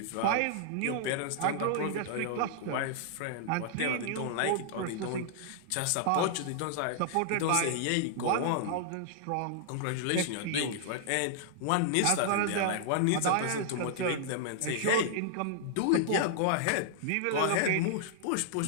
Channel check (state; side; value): different; both; correlation -0.01